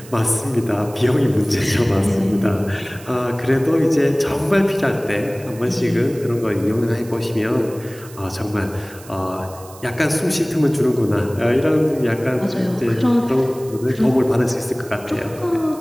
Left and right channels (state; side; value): noise; right; hiss, 20 dB below the sound